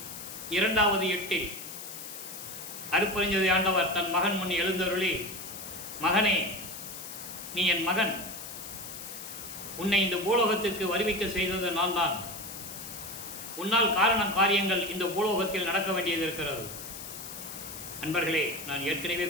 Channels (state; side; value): noise; left; hiss, 10 dB below the sound